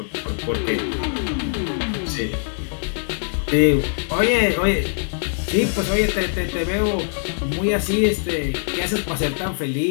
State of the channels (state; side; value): silent; right; digital silence